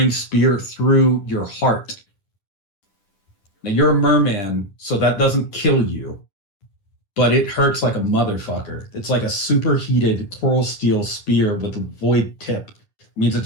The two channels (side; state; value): right; late; 10 ms